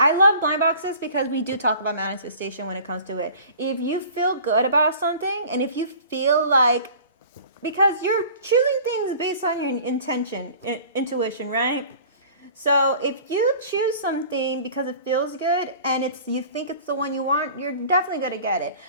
love blind boxes because we do talk about manifestation when it comes to it. If you feel good about something, and if you feel like, because you're choosing things based on your intention, intuition, right? So if you choose something because it feels good and you think it's the one you want, you're definitely gonna get it.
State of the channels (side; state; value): both; inverted; correlation -0.44